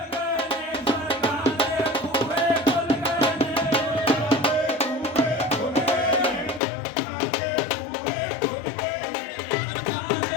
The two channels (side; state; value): right; drops out; at 6.6 s